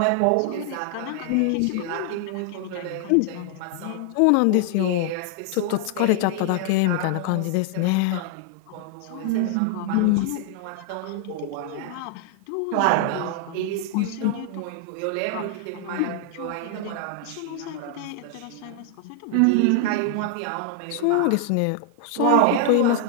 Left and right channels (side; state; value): both; different; correlation 0.00